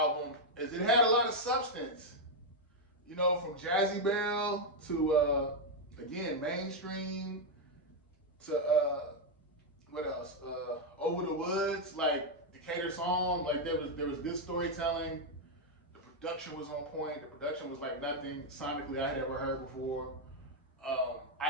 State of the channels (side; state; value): both; normal; correlation 0.00